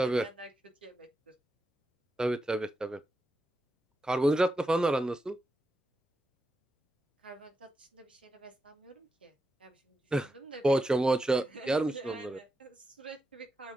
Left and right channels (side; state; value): both; normal; correlation 0.88